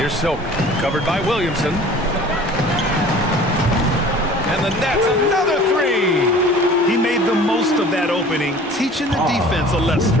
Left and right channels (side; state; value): both; normal; correlation 0.46